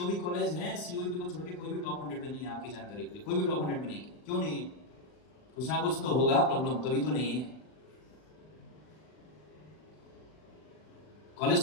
भी कॉलेज हैं सीओईपी को छोड़ के कोई भी टॉप 100 में नहीं है, आपकी जानकारी के लिए कोई भी टॉप 100 में नहीं है। क्यों नहीं है? कुछ ना कुछ तो होगा प्रॉब्लम, तभी तो नहीं है। कॉलेज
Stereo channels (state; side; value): late; right; 39 ms